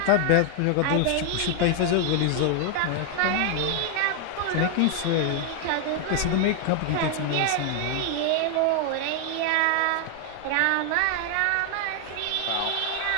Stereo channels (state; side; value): different; both; correlation 0.00